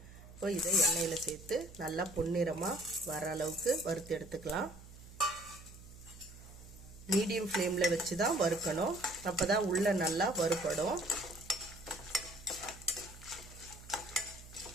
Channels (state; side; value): noise; right; hum, 18 dB below the sound